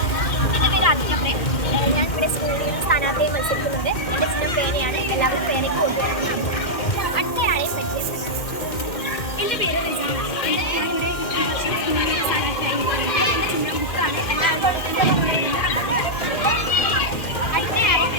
എൻ്റെ പേര് ആദിത്യപ്രേം. ഞാൻ ഇവിടെ സ്കൂളിൽ സ്ഥാനാർത്ഥിയെ മത്സരിക്കുന്നുണ്ട്. എൻ്റെ ചിഹ്നം പേനയാണ്. എല്ലാവരും പേനയ്ക്ക് കൊടുക്കുന്നതാണ്. അടുത്തയാളെ പരിചയപ്പെടാം. എൻ്റെ പേര് റിജാനാണ്. ഞാനിവിടെ സ്ഥാനാർത്ഥിയായി എൻ്റെ ചിഹ്നം ബുക്കാണ്.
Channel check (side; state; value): right; late; 2.1 ms